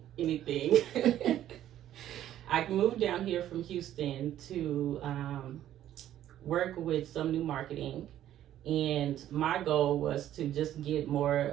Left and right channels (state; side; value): quieter; left; 12.0 dB